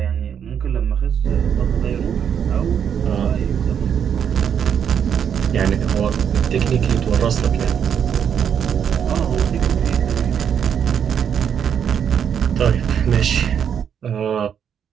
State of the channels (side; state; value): left; quieter; 8.1 dB